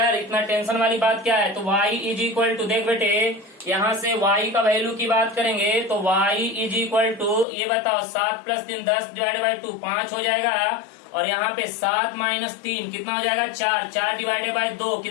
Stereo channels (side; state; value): right; drops out; at 7.5 s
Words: इतना टेंशन वाली बात क्या है। तो y इज इक्वल टू देख बेटे यहाँ से y का वैल्यू की बात करेंगे तो y इज इक्वल टू ये बताओ 7 प्लस 3 10 डिवाइडेड बाई 2 5 हो जाएगा और यहाँ पे 7 माइनस 3 कितना हो जाएगा 4 डिवाइडेड बाई 2